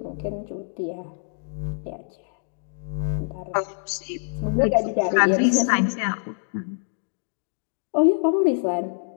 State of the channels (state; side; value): silent; right; digital silence